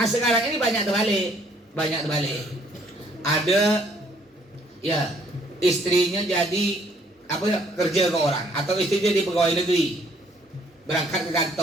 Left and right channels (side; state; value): both; normal; correlation 0.64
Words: ini banyak terbalik. Ada ya istrinya jadi kerja ke orang, atau istrinya jadi pegawai negeri, berangkat ke